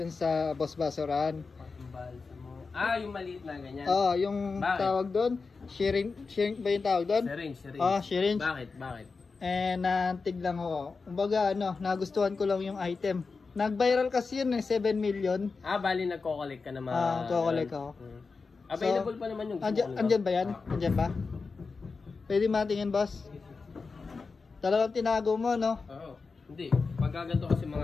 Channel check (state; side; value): quieter; right; 4.5 dB